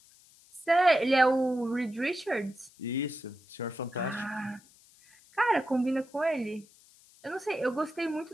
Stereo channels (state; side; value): noise; left; hiss, 27 dB below the sound